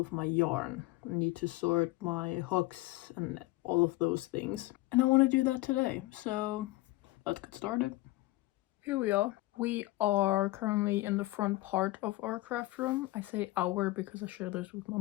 my yarn. I need to sort my hooks and all of those things. And I want to do that today, so let's get started. Here we are. We are currently in the front part of our craft room. I say our because I share this with my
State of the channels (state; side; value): quieter; right; 19.4 dB